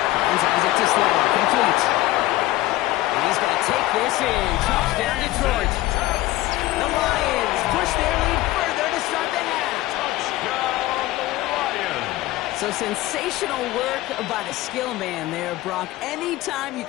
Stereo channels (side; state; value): right; quieter; 17.1 dB